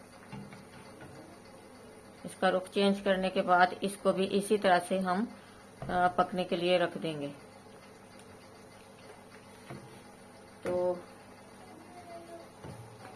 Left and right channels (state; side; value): identical; both; correlation 1.00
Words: इसका रुख चेंज करने के बाद इसको भी इसी तरह से हम पकने के लिए रख देंगे। तो